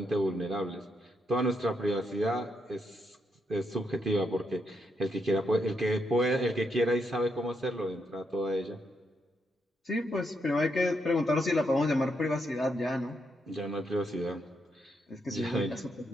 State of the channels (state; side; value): normal; both; correlation 0.79